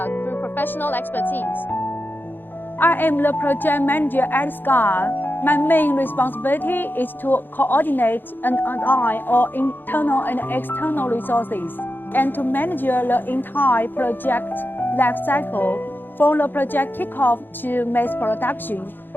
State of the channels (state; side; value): late; right; 0.095 ms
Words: through professional expertise. I am the project manager at SCUD. My main responsibility is to coordinate and align all internal and external resources and to manage the entire project life cycle from the project kickoff to mass production.